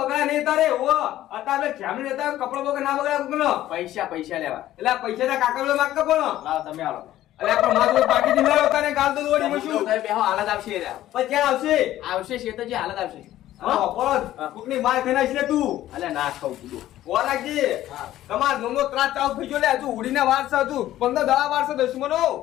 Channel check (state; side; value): quieter; right; 13.8 dB